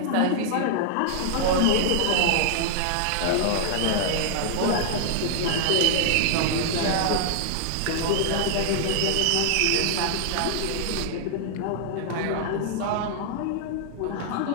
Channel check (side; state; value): both; different; correlation -0.01